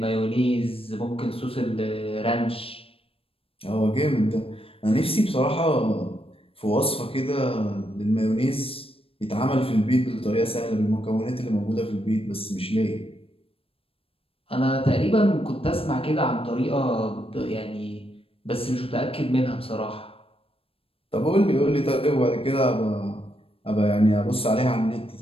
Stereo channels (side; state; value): right; late; 0.27 ms